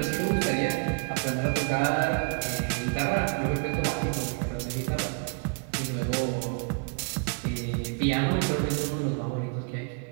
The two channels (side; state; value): left; quieter; 37.2 dB